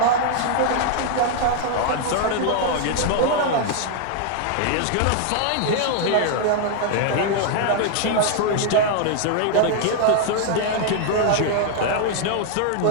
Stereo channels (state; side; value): different; both; correlation 0.00